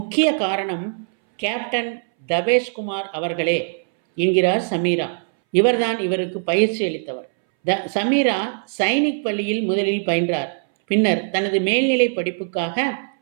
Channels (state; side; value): silent; left; 62 dB below the other